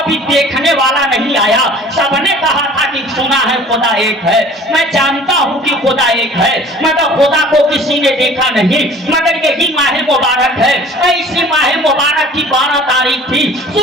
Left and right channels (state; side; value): normal; both; correlation 0.47